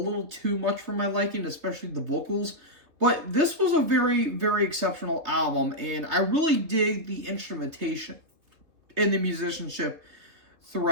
too much for my liking, especially the vocals. But this was a very, very exceptional album, and I really dig the instrumentation and the musicianship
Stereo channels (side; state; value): left; late; 3.3 ms